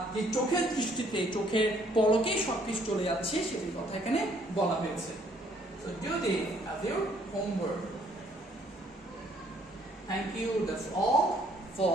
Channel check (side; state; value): both; normal; correlation 0.64